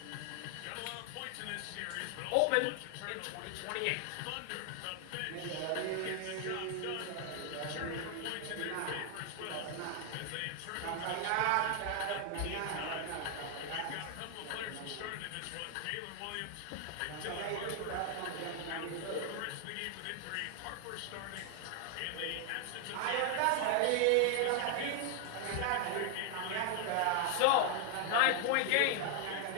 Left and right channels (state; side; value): different; both; correlation 0.00